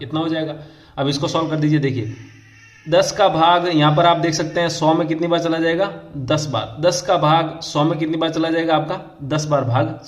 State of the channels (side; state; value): both; identical; correlation 1.00